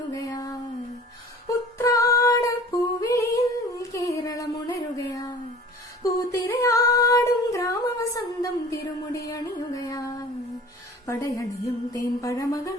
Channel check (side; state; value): both; normal; correlation 0.45